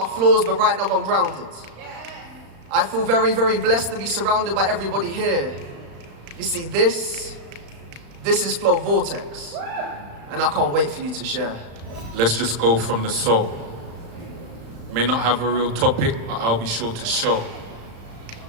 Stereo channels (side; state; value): left; late; 35 ms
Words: flaws, but right now I'm grounded. I feel very, very blessed to be surrounded by everybody here. You see, this is FLO Vortex, and I can't wait for you to share. Let's just go from the soul. May not have a real topic, but I'll be sure to show